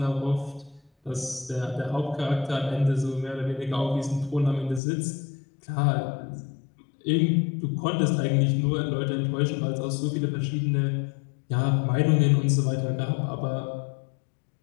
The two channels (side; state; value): right; drops out; at 4.8 s